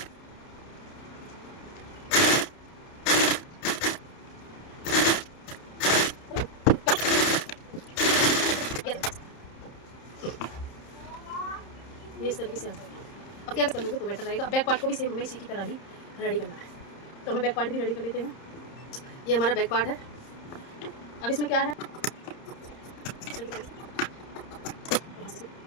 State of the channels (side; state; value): right; late; 30 ms